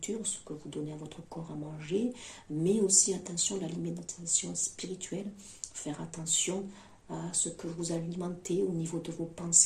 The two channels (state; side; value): identical; both; correlation 1.00